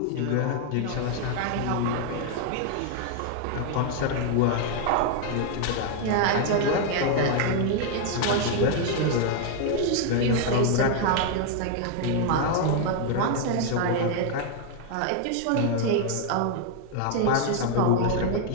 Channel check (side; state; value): both; different; correlation 0.01